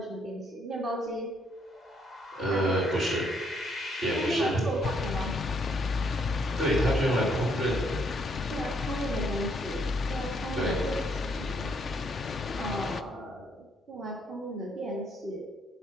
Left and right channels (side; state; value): both; normal; correlation 0.71